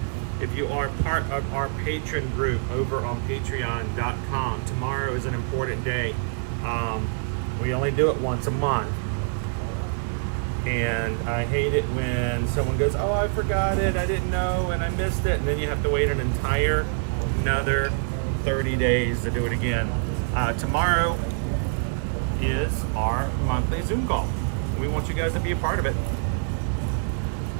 if you are part of our patron group over on patreon.com, tomorrow is an important day. We only do it once a month. And I hate it when someone goes, oh, I forgot it, I didn't know, and I missed it. And then you have to wait another 30 days to do it again. Tomorrow is our monthly Zoom call. We want you guys to be a part of it.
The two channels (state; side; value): silent; left; digital silence